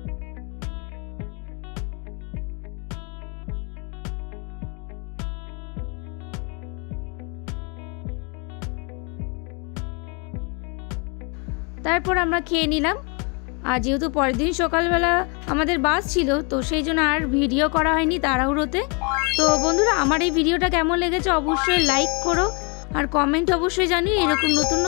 তারপর আমরা খেয়ে নিলাম, আর যেহেতু পরের দিন সকালবেলা আমাদের বাস ছিল, তো সেই জন্য আর ভিডিও করা হয়নি তাড়াহুড়োতে। তো বন্ধুরা, আমার এই ভিডিওটা কেমন লেগেছে অবশ্যই লাইক করো, আর কমেন্ট অবশ্যই জানিও এরকম নতুন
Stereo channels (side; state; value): right; quieter; 33.2 dB